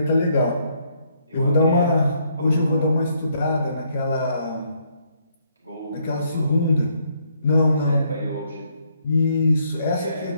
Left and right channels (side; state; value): both; inverted; correlation -0.71